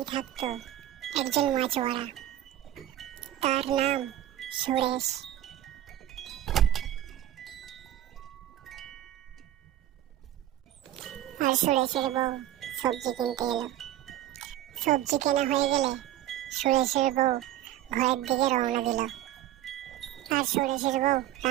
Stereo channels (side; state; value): left; quieter; 12.9 dB